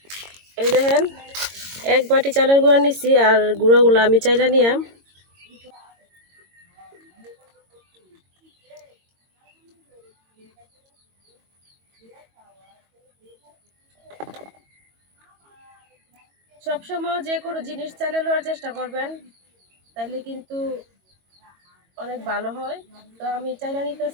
এই দেখেন, এক বাটি চালের গুঁড়া নিচ্ছি, আর গুঁড়াগুলো আমি চাইলা নিয়াম। সবসময় যে কোনো জিনিস চালে নেওয়ার চেষ্টা করবেন, তাইলে কিন্তু অনেক ভালো হয়। তো আমি চাইলা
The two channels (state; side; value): late; left; 22 ms